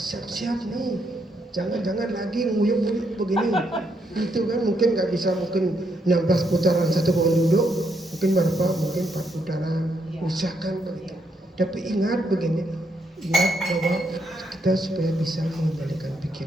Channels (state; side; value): normal; both; correlation 0.77